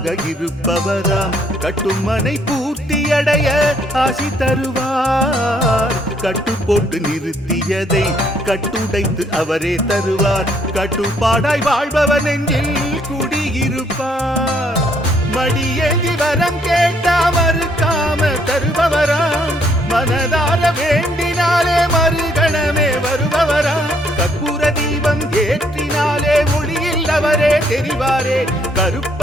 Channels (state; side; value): normal; both; correlation 0.68